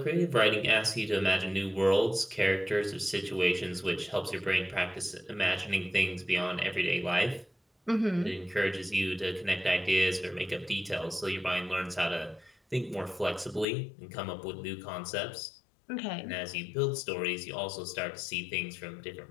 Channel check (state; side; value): drops out; right; at 13.7 s